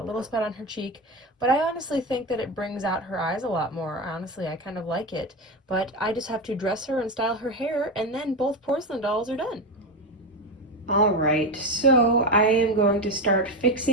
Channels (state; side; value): normal; both; correlation 0.16